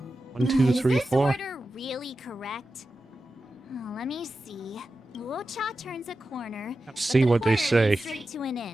1, 2, 3, Is this 4. order really correct? Oh, let me see. Luocha turns a corner. See but the what they corner say. leads straight to an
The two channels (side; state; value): both; normal; correlation 0.92